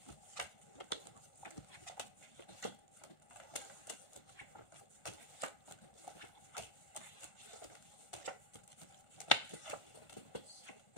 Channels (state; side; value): late; right; 1.4 ms